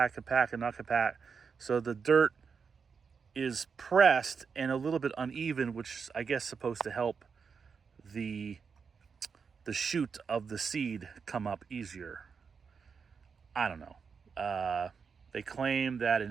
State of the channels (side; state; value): left; quieter; 5.8 dB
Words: compact and not compact. So the dirt is pressed and a little bit uneven, which I guess is supposed to help the shoot of the seed come up easier. I don't know. They claim that